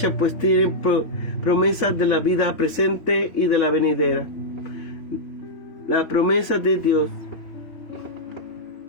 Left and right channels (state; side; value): late; right; 3.0 ms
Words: pues tiene promesas de la vida presente y de la venidera. La promesa de Dios